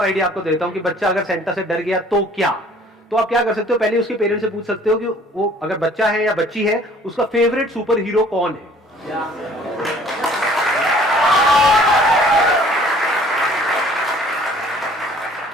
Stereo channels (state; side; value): normal; both; correlation 0.54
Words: आइडिया आपको देता हूँ कि बच्चा अगर सेंटा से डर गया तो क्या, तो आप क्या कर सकते हो, पहले उसके पेरेंट्स से पूछ सकते हो कि वो अगर बच्चा है या बच्ची है, उसका फेवरेट सुपर हीरो कौन है।